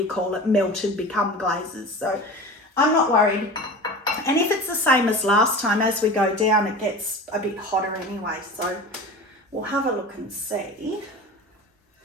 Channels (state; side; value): normal; both; correlation 0.34